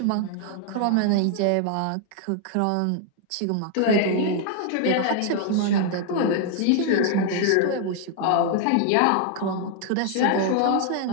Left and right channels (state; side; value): different; both; correlation 0.00